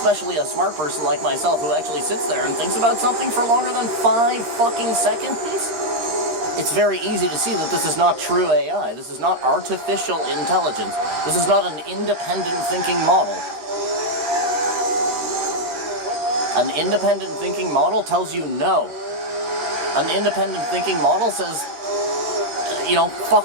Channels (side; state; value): left; late; 13 ms